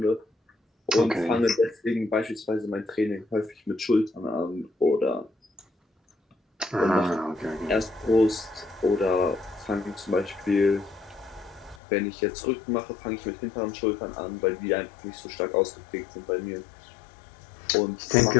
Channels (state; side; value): drops out; right; at 11.8 s